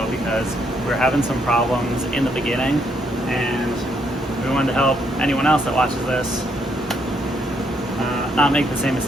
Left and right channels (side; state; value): both; normal; correlation 0.73